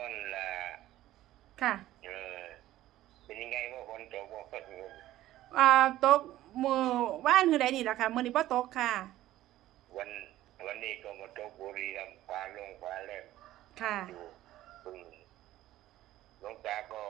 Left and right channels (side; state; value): left; quieter; 14.7 dB